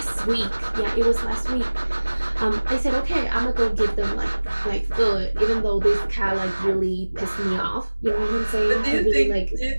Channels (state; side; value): inverted; both; correlation -1.00